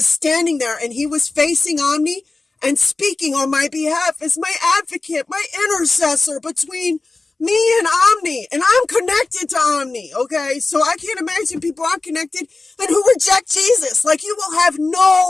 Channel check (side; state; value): right; quieter; 3.5 dB